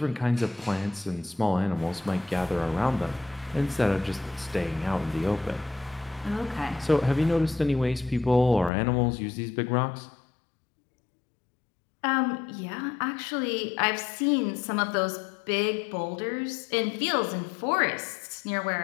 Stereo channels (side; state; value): right; drops out; at 8.7 s